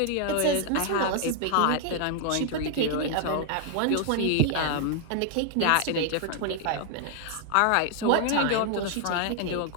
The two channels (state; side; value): different; both; correlation 0.00